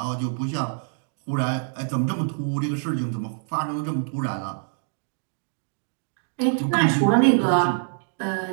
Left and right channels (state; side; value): silent; left; digital silence